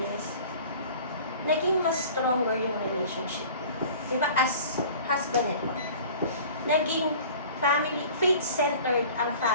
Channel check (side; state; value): both; inverted; correlation -0.44